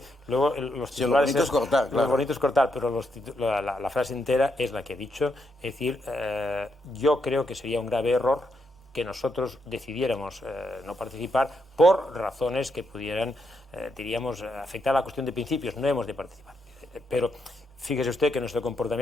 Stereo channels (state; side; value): normal; both; correlation 0.80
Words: luego los titulares... Sí, lo bonito es cortar, claro. Lo bonito es cortar, pero la frase entera es la que he dicho. Es decir, yo creo que sería un grave error que nosotros decidiéramos no participar por razones que pudieran, diríamos, afectar a la cuestión de principios. No hemos de participar. Pero fíjese usted que nuestro